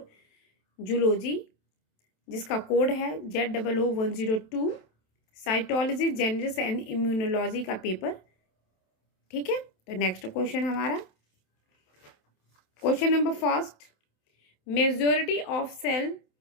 zoology, जिसका कोड है ZOO102, cytology, genetics and immunology का पेपर। ठीक है, तो नेक्स्ट क्वेश्चन हमारा question number first, majority of cell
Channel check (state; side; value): late; right; 27 ms